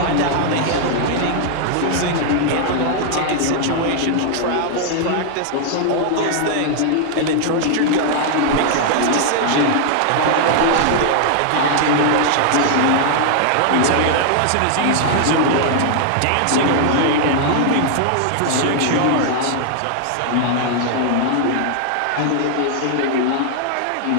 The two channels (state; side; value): different; both; correlation 0.00